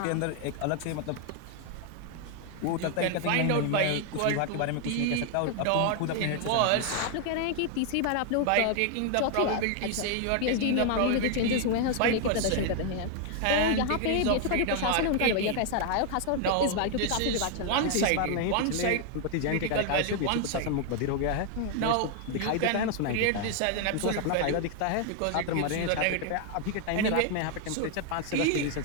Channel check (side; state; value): both; different; correlation 0.00